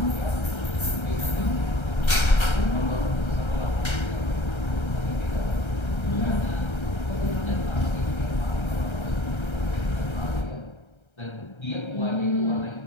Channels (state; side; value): late; right; 1.3 ms